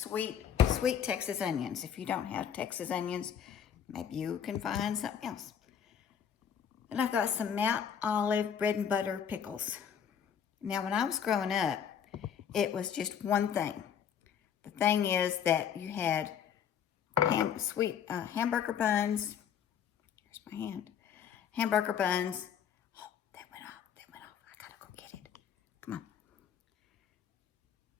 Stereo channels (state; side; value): quieter; right; 8.3 dB